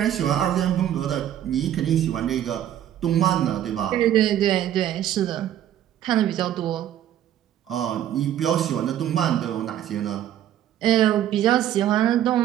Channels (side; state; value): left; quieter; 11.4 dB